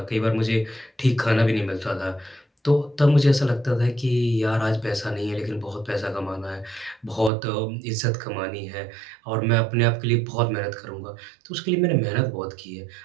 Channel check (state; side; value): drops out; left; at 7.3 s